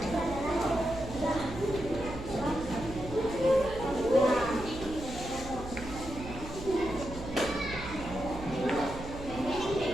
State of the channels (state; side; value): noise; right; hum, 11 dB below the sound